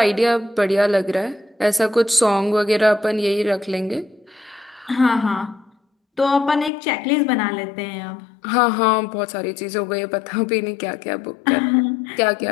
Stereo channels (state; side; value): drops out; right; at 6.7 s